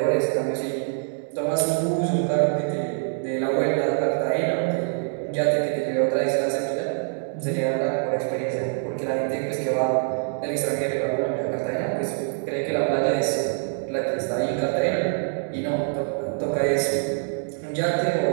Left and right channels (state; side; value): silent; left; 62 dB below the other